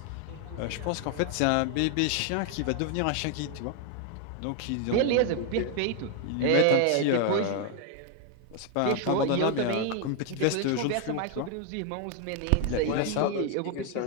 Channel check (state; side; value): different; both; correlation 0.01